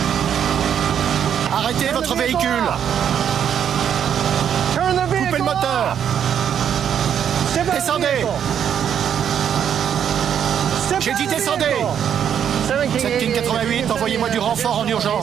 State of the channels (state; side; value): quieter; left; 8.7 dB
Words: Arrêtez votre véhicule! Coupez le moteur! Descendez! J'ai dit descendez! 7 King 88, envoyez-moi du renfort en